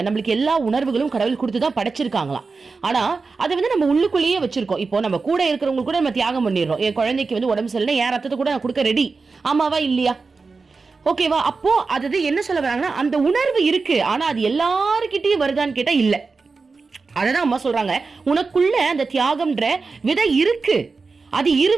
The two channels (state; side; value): quieter; left; 4.3 dB